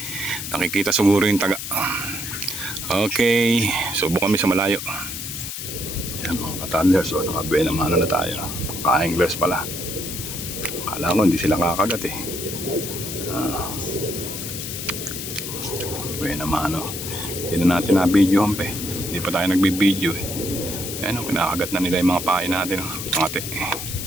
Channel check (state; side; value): noise; left; hiss, 6 dB below the sound